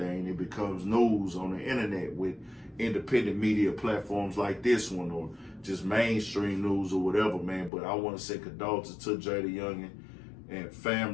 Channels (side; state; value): right; drops out; at 7.7 s